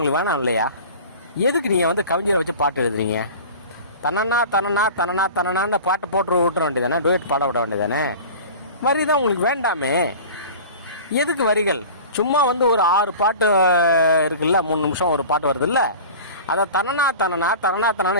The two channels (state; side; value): inverted; both; correlation -0.38